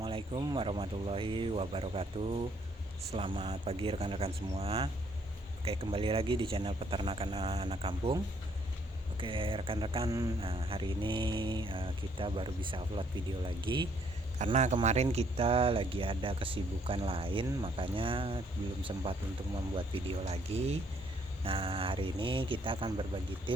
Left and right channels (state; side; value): normal; both; correlation 0.67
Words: warahmatullahi wabarakatuh. Selamat pagi rekan-rekan semua. Oke, kembali lagi di channel Peternakan Anak Kampung. Oke, rekan-rekan, hari ini kita baru bisa upload video lagi karena kemarin kita lagi ada kesibukan lain, makanya belum sempat untuk membuat video lagi. Nah, hari ini kita akan berbagi